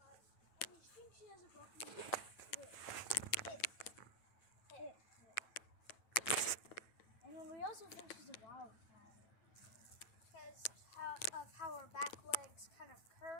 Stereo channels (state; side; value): late; right; 9.1 ms